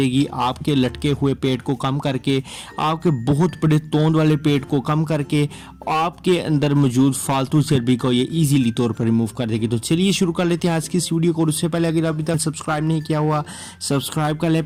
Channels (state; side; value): identical; both; correlation 1.00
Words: आपके लटके हुए पेट को कम करके, आपके बहुत बड़े तोंद वाले पेट को कम करके, आपके अंदर मौजूद फालतू चर्बी को ये ईजीली तौर पर रिमूव कर देगी। तो चलिए शुरू कर लेते हैं आज की इस वीडियो को। उससे पहले अगर अभी तक सब्सक्राइब नहीं किया हुआ, सब्सक्राइब कर लें